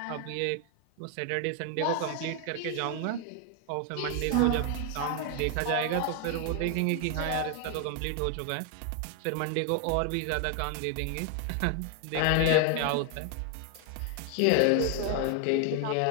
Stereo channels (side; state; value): both; different; correlation 0.01